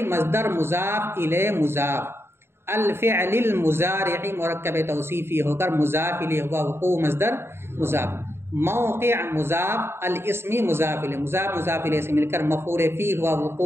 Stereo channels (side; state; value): left; late; 0.12 ms